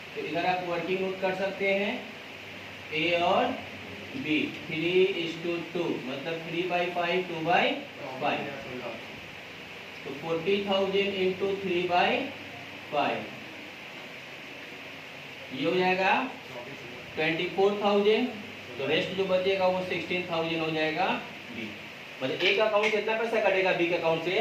तो इधर आप वर्किंग नोट कर सकते हैं, ए और बी 3:2, मतलब 3/5 2/5। तो 40,000 इंटू 3/5 ये हो जाएगा 24,000। तो रेस्ट जो बचेगा वो 16,000 हो जाएगा बी। मतलब एक अकाउंट से इतना पैसा कटेगा, बी के अकाउंट से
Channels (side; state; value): both; identical; correlation 1.00